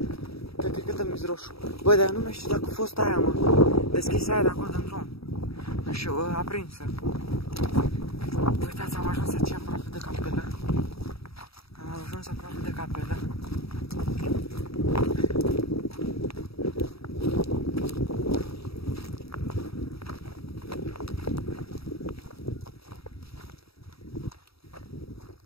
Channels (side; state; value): right; late; 0.77 ms